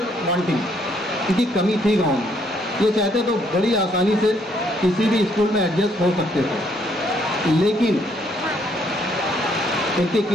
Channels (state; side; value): normal; both; correlation 0.69